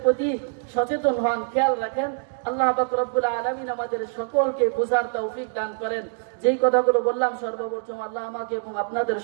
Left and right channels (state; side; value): silent; left; digital silence